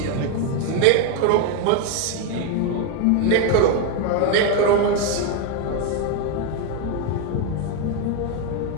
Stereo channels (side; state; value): both; different; correlation 0.01